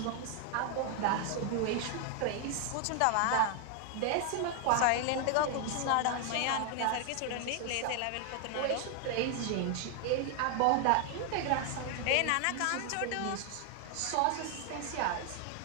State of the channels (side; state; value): both; different; correlation 0.00